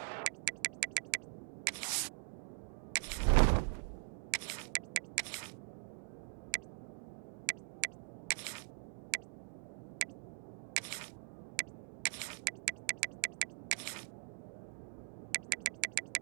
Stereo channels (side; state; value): left; silent; digital silence